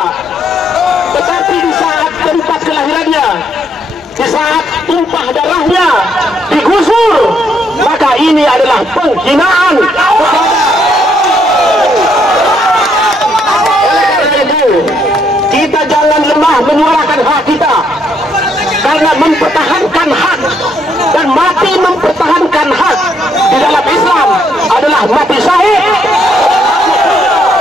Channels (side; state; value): both; normal; correlation 0.72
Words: Tetapi di saat tempat kelahirannya, di saat tumpah darahnya digusur, maka ini adalah penghinaan. Oleh karena itu, kita jangan lemah menyuarakan hak kita, karena mempertahankan hak dan mati mempertahankan hak di dalam Islam adalah mati syahid.